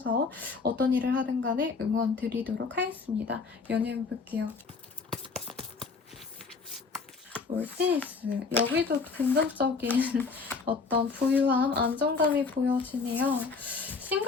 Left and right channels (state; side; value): quieter; right; 4.6 dB